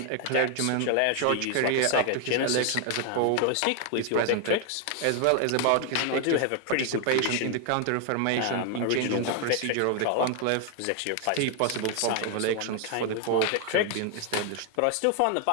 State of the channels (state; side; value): different; both; correlation 0.01